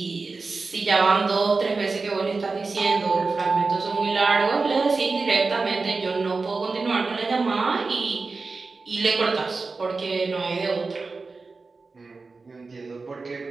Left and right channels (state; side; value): quieter; left; 4.0 dB